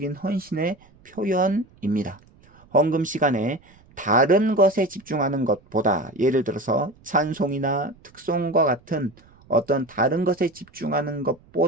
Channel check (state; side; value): noise; right; rumble, 28 dB below the sound